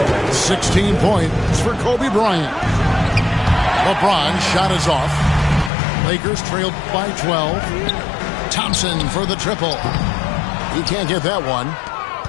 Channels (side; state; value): right; drops out; at 5.7 s